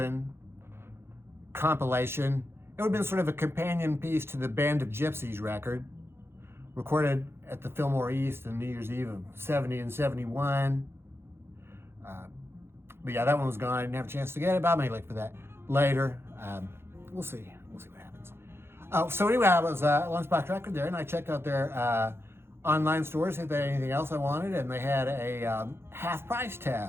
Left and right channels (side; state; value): left; late; 0.12 ms